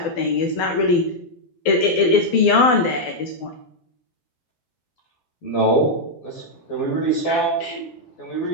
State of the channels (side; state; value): right; late; 12 ms